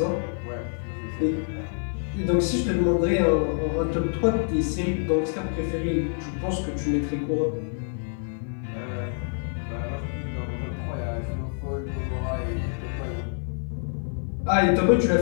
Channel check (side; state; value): right; silent; 60 dB below the other